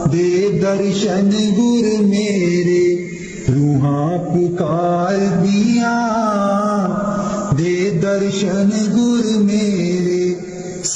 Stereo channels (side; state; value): both; identical; correlation 1.00